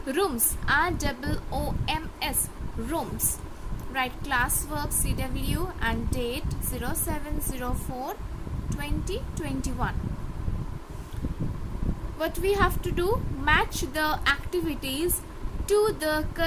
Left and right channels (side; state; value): both; identical; correlation 1.00